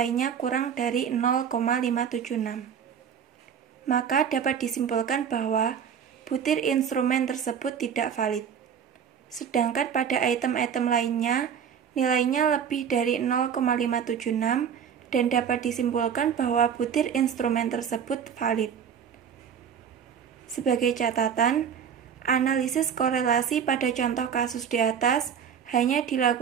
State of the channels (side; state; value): left; quieter; 7.8 dB